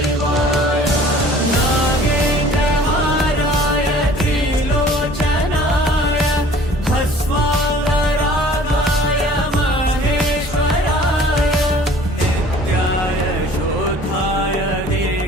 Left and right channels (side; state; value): both; normal; correlation 0.50